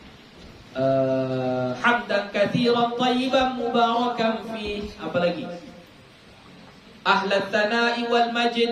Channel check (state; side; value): identical; both; correlation 1.00